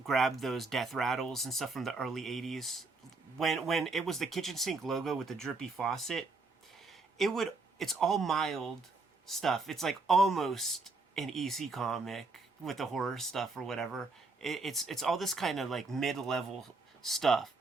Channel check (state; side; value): quieter; left; 3.7 dB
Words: grab those death rattles and stuff from the early '80s. When it was the kitchen sink logo with the drippy faucet, it's all mild stuff. It's like almost an EC comic with the horror stuff or whatever. It's all this kind of like mid-level stuff.